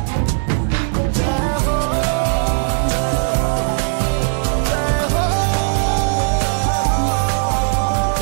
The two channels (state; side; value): silent; left; 58 dB below the other